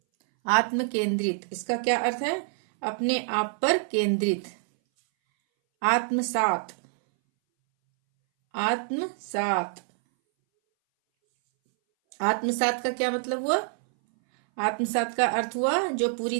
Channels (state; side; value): silent; left; 60 dB below the other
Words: आत्म केंद्रित इसका क्या अर्थ है? अपने आप पर केंद्रित। आत्मसात। आत्मसात आत्मसात का क्या मतलब हुआ? आत्मसात का अर्थ हुआ जो पूरी